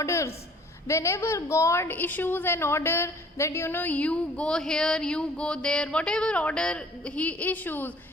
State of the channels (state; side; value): normal; both; correlation 0.54